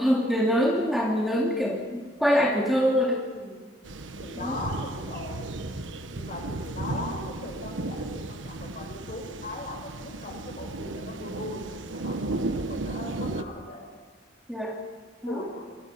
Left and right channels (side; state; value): both; normal; correlation 0.60